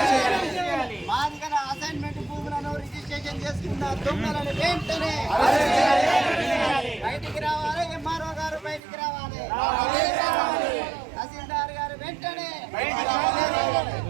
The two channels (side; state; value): left; drops out; at 8.8 s